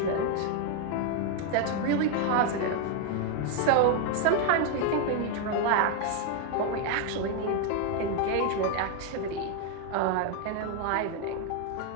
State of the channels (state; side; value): different; both; correlation 0.00